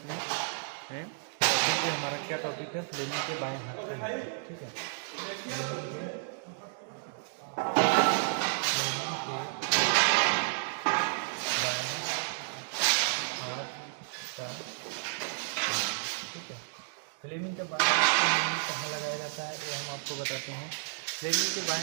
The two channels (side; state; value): left; silent; digital silence